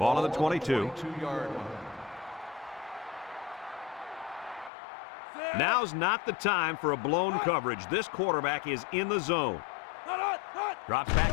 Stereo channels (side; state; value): right; drops out; at 4.7 s